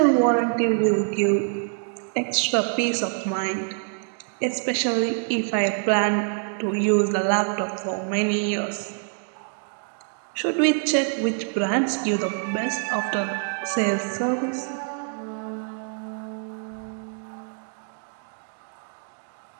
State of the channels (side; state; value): left; silent; 56 dB below the other